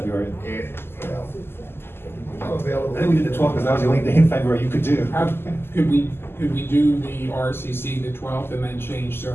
I'm available. I think we did the 12th because that was the only day in February you could do. Could we do the RCC the 12th and then change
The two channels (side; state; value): right; late; 0.11 ms